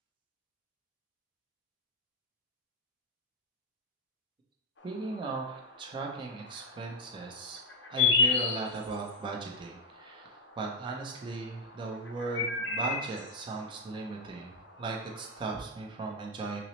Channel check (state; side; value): normal; both; correlation 0.02